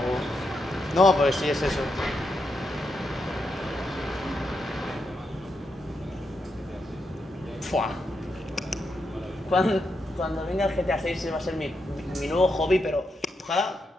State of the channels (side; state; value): both; normal; correlation 0.83